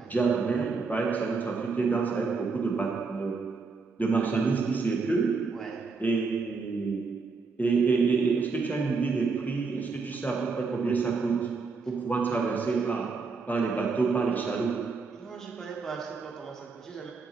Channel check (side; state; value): left; quieter; 4.5 dB